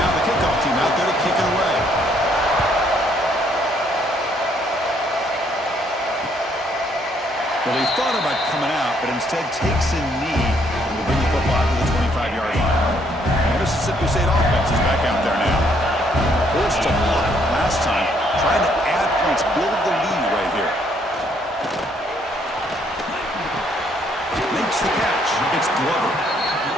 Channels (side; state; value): both; normal; correlation 0.68